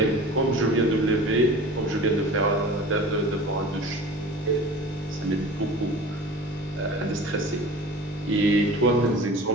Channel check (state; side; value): normal; both; correlation 0.40